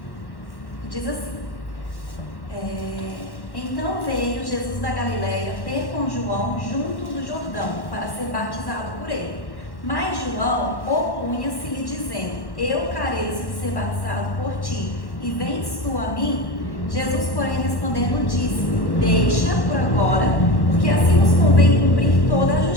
Diz assim: Então veio Jesus da Galileia ter com João junto do Jordão, para ser batizado por ele. Mas João opunha-se-lhe, dizendo: Eu careço de ser batizado por ti, e vens tu a mim? Jesus, porém, respondendo, disse-lhe: Deixa por agora, porque assim nos convém cumprir toda a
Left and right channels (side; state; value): right; late; 1.1 ms